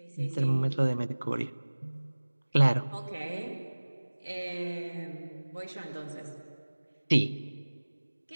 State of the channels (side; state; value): both; inverted; correlation -1.00